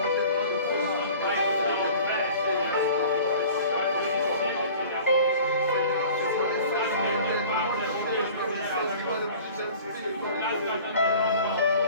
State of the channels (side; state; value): both; inverted; correlation -0.45